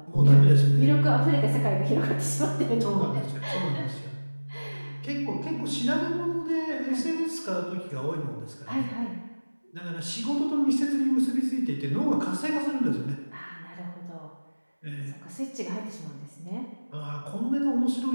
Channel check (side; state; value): both; inverted; correlation -1.00